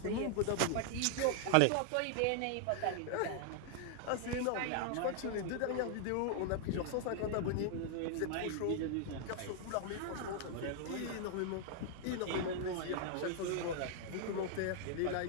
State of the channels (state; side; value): different; both; correlation 0.00